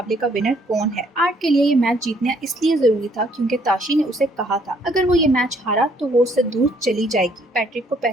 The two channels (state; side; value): normal; both; correlation 0.65